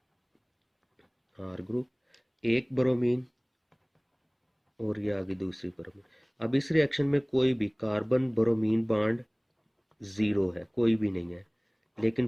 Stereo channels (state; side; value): identical; both; correlation 1.00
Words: आर ग्रुप, एक बोरोमीन और ये आगे दूसरी बोरोमीन। अब इस रिएक्शन में कोई भी कार्बन बोरोमीन बॉन्ड ज़ीरो है, कोई भी नहीं है, लेकिन